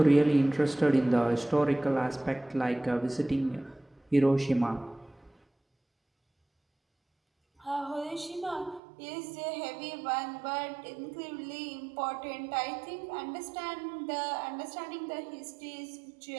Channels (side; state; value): left; drops out; at 8.8 s